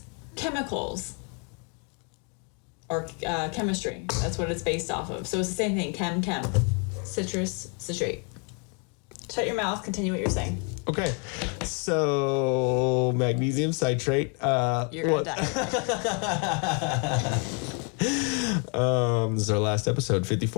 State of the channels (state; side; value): quieter; right; 36.9 dB